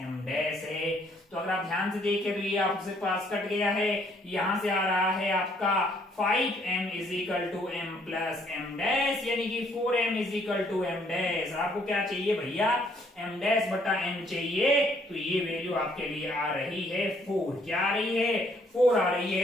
डैश है। तो अगर आप ध्यान से देखें तो ये आपसे पास कट गया है, यहां से आ रहा है आपका 5m is equal to m plus m dash, यानी कि 4m is equal to m dash. आपको क्या चाहिए भैया, m डैश बटा m चाहिए, तो ये वैल्यू आपके लिए आ रही है 4। क्या आ रही है, 4 आ रही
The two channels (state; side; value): normal; both; correlation 0.66